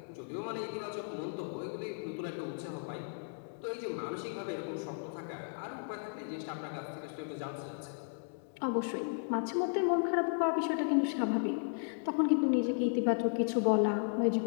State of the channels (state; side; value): silent; right; digital silence